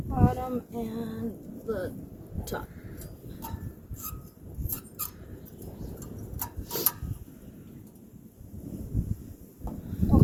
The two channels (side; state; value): both; identical; correlation 1.00